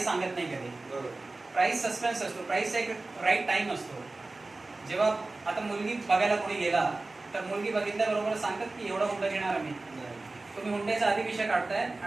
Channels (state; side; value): quieter; left; 3.2 dB